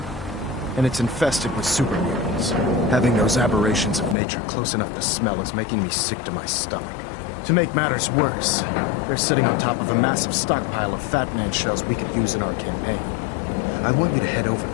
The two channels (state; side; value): drops out; right; at 4.2 s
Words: And it's infested with super mutants. Having those aberrations of nature close enough to smell is making me sick to my stomach. To make matters worse, they're sitting on top of a massive stockpile of Fat Man shells we could use in our campaign. I want you to head over